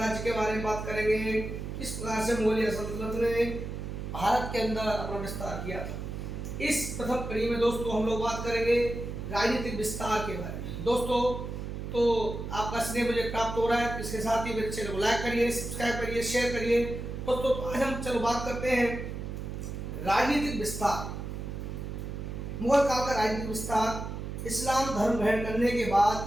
के बारे में बात करेंगे, किस प्रकार से मुगलिया सल्तनत ने भारत के अंदर अपना विस्तार किया था। इस प्रथम कड़ी में दोस्तों हम लोग बात करेंगे राजनीतिक विस्तार के बारे में। दोस्तों तो आपका स्नेह मुझे प्राप्त हो रहा है, इसके साथ ही मेरे चैनल को लाइक करिए, सब्सक्राइब करिए, शेयर करिए। दोस्तों आज हम चलो बात करते हैं राजनीतिक विस्तार। मुगल काल का राजनीतिक विस्तार। इस्लाम धर्म ग्रहण करने के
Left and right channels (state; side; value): noise; right; hum, 6 dB below the sound